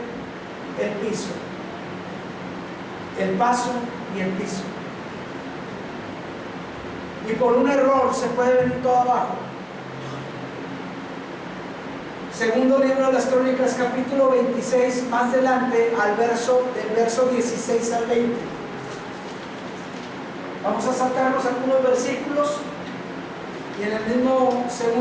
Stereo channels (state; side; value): identical; both; correlation 1.00